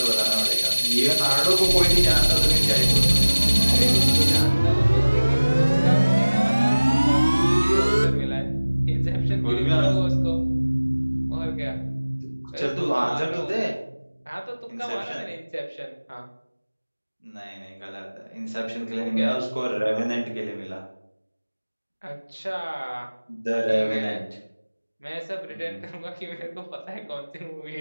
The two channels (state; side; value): inverted; both; correlation -1.00